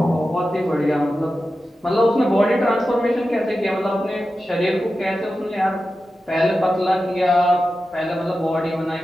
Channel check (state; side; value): normal; both; correlation 0.92